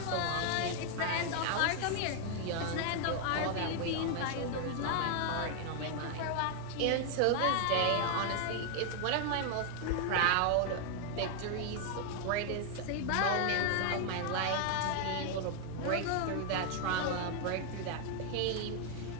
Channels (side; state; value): both; different; correlation 0.00